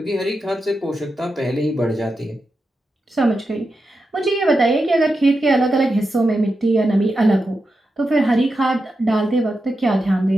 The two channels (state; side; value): normal; both; correlation 0.89